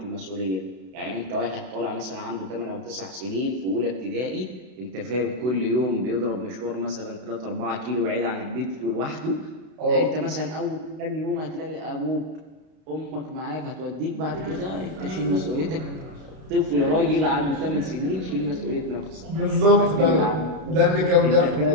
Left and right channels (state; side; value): late; left; 32 ms